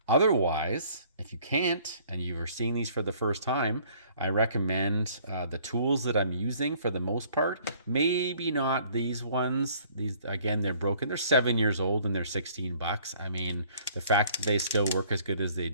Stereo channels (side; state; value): both; inverted; correlation -0.58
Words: Otherwise, if you can't and you are seeing these for the first time, I recommend the tools that I'm using for the most part. Maybe not these ones. These, again, they're broken. They're 7 years old and they're 16 bucks. I mean, the fact that they still work as good as they